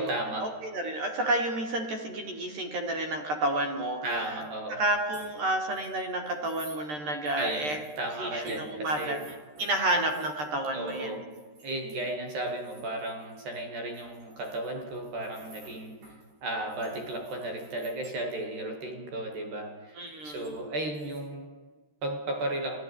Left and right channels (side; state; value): left; late; 13 ms